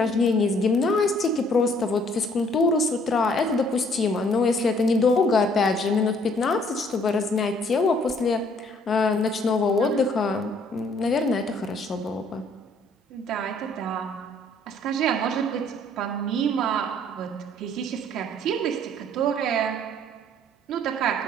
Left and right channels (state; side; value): normal; both; correlation 0.61